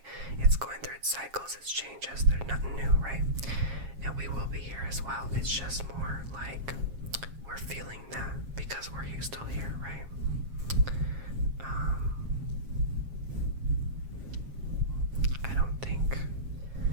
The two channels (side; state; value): left; late; 7.4 ms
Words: It's going through its cycles, its changes. There's nothing new, right? And we will be here as well. It's just more like we're feeling that because we're still here, right? I don't think